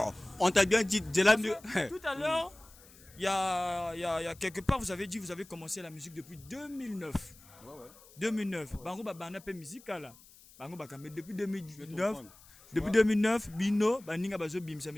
on t'a bien dit, de là. Tout à l'heure, il y a quelque part, vous avez dit, vous avez commencé la musique depuis 2009. Ouais. 2009. Bango, bah, on a fait musique là. Bango, bah, mais depuis 2009. Depuis 2009, Bino, Baninga Bazo Bim, ça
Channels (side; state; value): left; noise; hiss, 24 dB below the sound